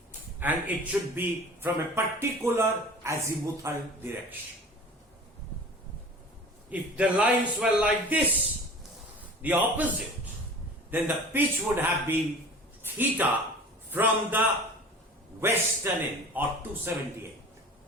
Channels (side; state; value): both; normal; correlation 0.41